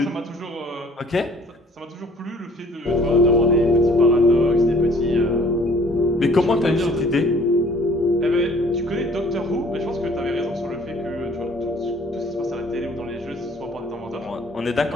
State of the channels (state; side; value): normal; both; correlation 0.55